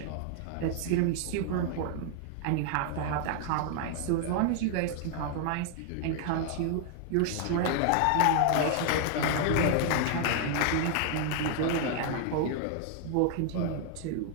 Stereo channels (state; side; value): different; both; correlation 0.00